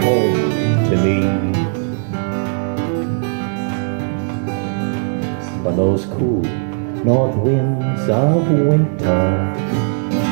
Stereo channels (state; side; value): silent; left; 64 dB below the other